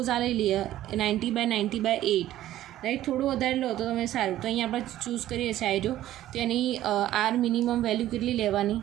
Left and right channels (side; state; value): left; quieter; 13.7 dB